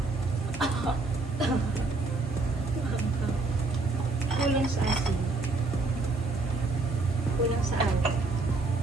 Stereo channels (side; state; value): left; quieter; 3.5 dB